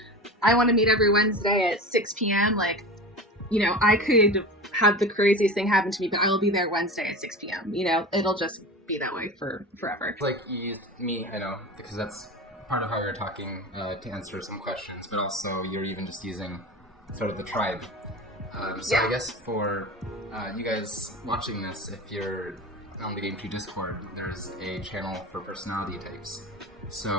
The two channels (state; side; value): normal; both; correlation 0.30